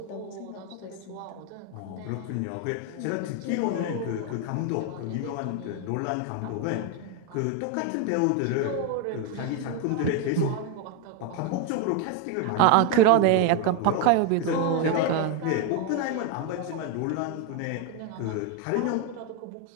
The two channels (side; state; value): both; different; correlation 0.01